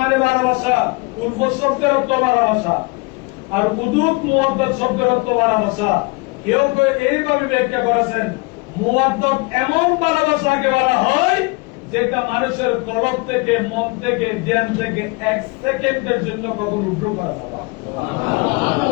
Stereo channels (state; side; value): quieter; right; 27.2 dB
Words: ভালোবাসা, উলফত শব্দের অর্থ ভালোবাসা, আর উদুদ মুওয়াদ্দাত শব্দের অর্থ ভালোবাসা। কেউ কেউ এইভাবে ব্যাখ্যা করেছেন, মুওয়াদ্দাত এমন ভালোবাসাকে বলা হয় যেটা মানুষের কলব থেকে, মন থেকে, জ্ঞান থেকে এক সেকেন্ডের জন্য কখনো উঠো করা যায় না।